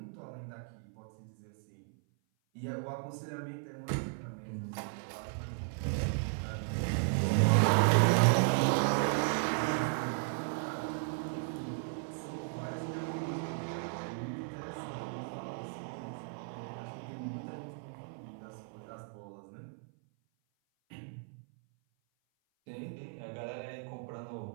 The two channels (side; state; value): left; silent; 54 dB below the other